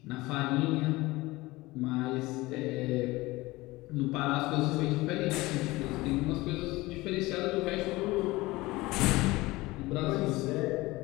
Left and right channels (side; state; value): right; quieter; 20.4 dB